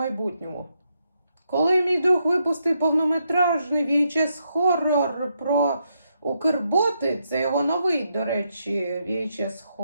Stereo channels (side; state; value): both; inverted; correlation -0.80